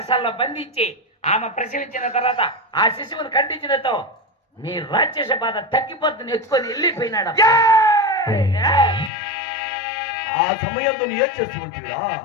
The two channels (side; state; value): right; drops out; at 9.1 s